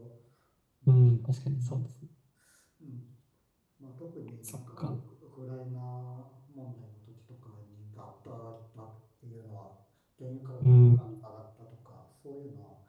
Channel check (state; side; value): identical; both; correlation 1.00